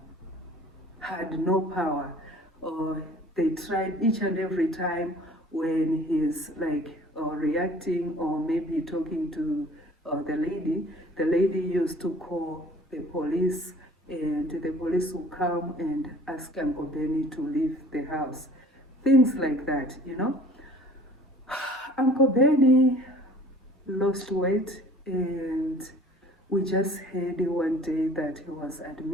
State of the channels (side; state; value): both; normal; correlation 0.50